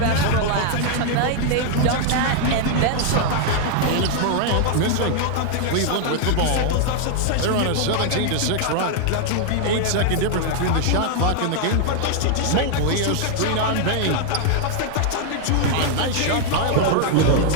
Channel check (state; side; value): different; both; correlation 0.00